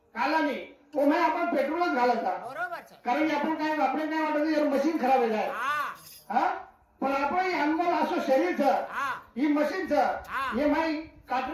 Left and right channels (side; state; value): both; identical; correlation 1.00